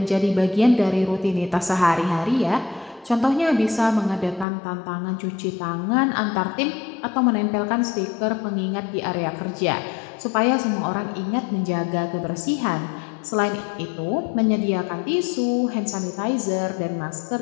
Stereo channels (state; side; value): drops out; right; at 4.5 s